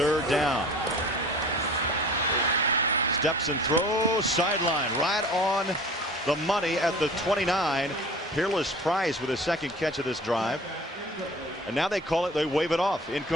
down. Steps and throws, sideline, right on the money at the 29. Peerless Price with his 2nd catch of this drive. And now they call it, they wave it off,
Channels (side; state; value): both; normal; correlation 0.43